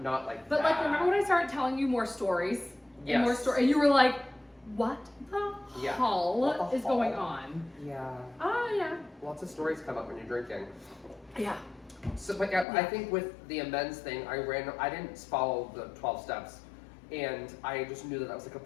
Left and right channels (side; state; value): right; drops out; at 12.7 s